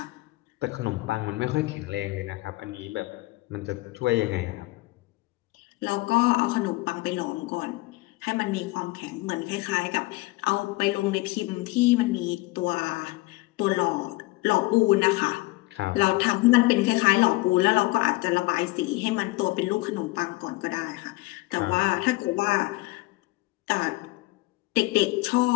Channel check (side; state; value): right; quieter; 21.5 dB